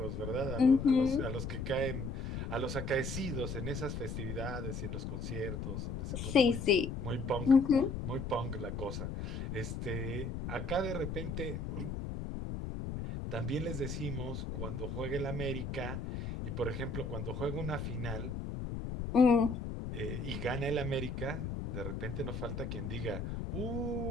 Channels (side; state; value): left; noise; rumble, 4 dB below the sound